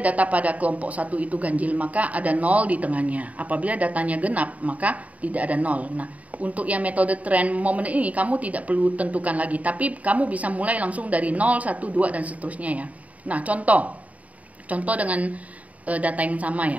pada kelompok 1 itu ganjil, maka ada 0 di tengahnya. Apabila datanya genap, maka tidak ada 0. Nah, untuk yang metode trend moment ini kamu tidak perlu tentukan lagi, tapi kamu bisa mulai langsung dari 0, 1, 2, dan seterusnya ya. Nah, contoh dengan data yang sama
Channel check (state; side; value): late; left; 0.070 ms